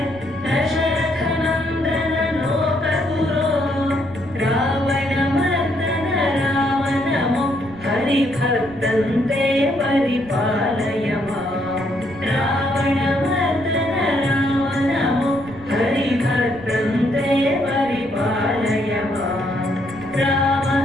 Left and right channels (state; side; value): noise; right; rumble, 19 dB below the sound